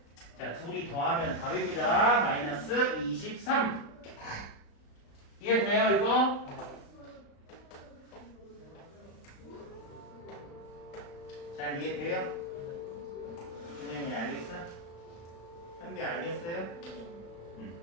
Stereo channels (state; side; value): late; right; 35 ms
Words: 자, 둘이 더하면 답입니다. 마이너스 23 이해돼요 이거? 잘 이해돼요? 선생님이 알겠어? 현비 알겠어요?